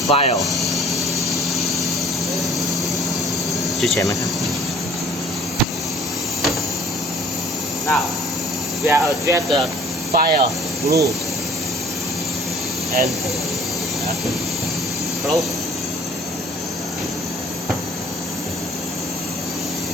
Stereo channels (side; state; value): both; normal; correlation 0.53